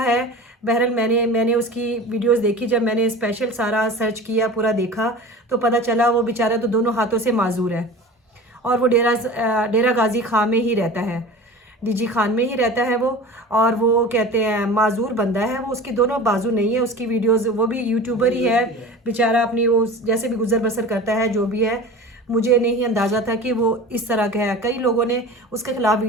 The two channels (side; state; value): both; normal; correlation 0.36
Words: है, बहरहाल मैंने उसकी वीडियोस देखी। जब मैंने स्पेशल सारा सर्च किया, पूरा देखा, तो पता चला वो बेचारा तो दोनों हाथों से माजूर है और वो डेरा गाजी खां में ही रहता है, डीजी खान में ही रहता है वो। और वो कहते हैं माजूर बंदा है वो, उसकी दोनों बाजू नहीं है। उसकी वीडियोस, वो भी यूट्यूबर ही है बेचारा, अपनी वो जैसे भी गुजर बसर करता है, जो भी है। मुझे नहीं अंदाज़ा था कि वो इस तरह का है। कई लोगों ने उसके खिलाफ